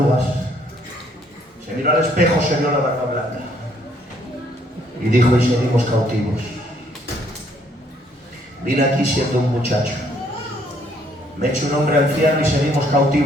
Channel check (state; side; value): normal; both; correlation 0.66